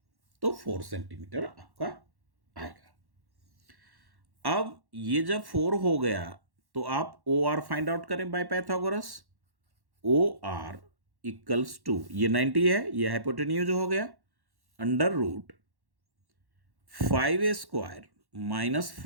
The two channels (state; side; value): late; left; 1.1 ms